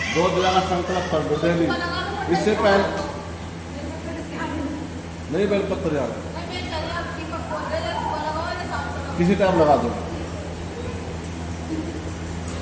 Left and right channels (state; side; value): identical; both; correlation 1.00